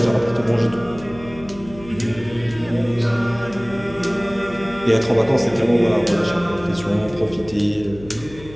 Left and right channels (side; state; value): left; noise; hum, 18 dB below the sound